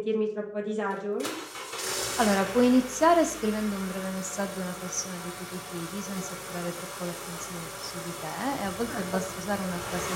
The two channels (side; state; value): both; identical; correlation 1.00